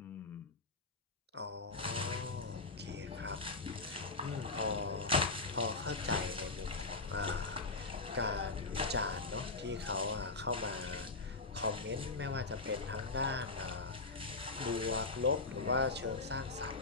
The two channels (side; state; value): right; quieter; 3.6 dB